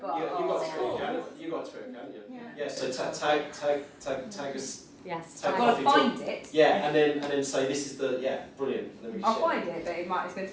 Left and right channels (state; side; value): identical; both; correlation 1.00